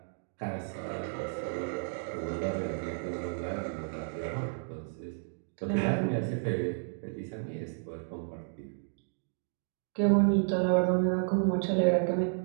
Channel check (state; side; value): silent; left; digital silence